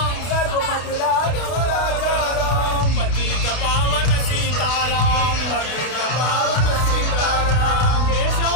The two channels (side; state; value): right; late; 32 ms